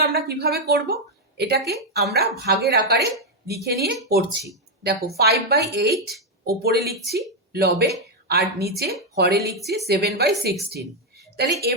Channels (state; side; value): normal; both; correlation 0.01